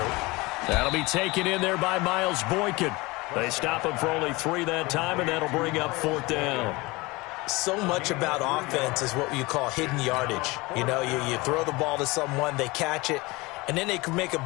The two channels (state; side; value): quieter; right; 23.2 dB